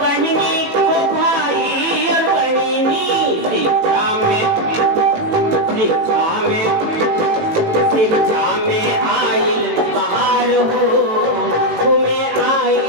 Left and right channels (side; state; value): left; late; 18 ms